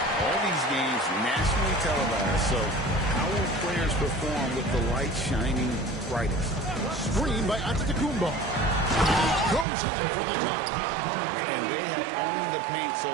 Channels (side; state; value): left; drops out; at 9.7 s